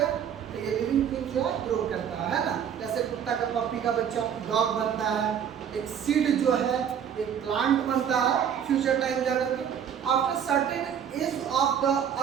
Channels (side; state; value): left; quieter; 8.5 dB